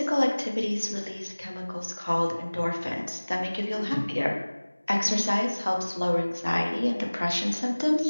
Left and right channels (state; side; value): inverted; both; correlation -1.00